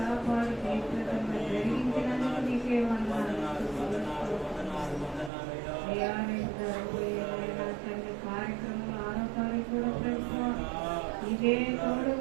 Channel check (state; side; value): drops out; left; at 5.3 s